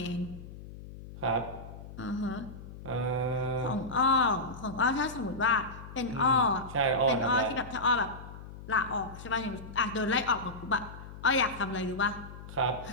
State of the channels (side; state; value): left; noise; hum, 14 dB below the sound